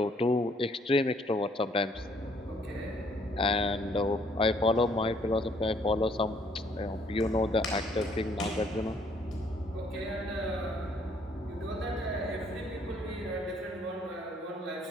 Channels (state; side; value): normal; both; correlation 0.64